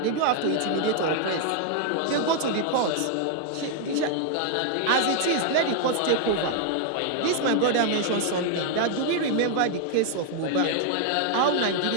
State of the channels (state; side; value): different; both; correlation 0.00